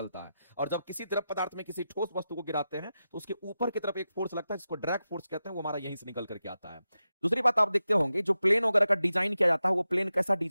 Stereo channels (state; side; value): inverted; both; correlation -0.91